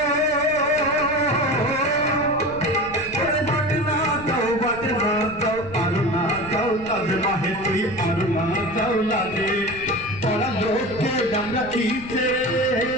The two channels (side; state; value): right; noise; rumble, 17 dB below the sound